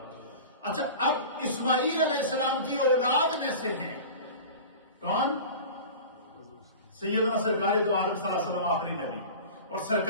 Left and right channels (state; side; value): inverted; both; correlation -0.36